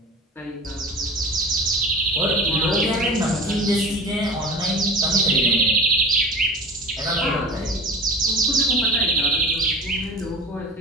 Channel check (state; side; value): normal; both; correlation 0.34